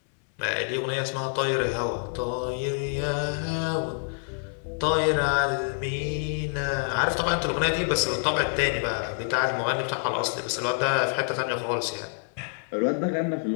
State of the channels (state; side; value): silent; right; digital silence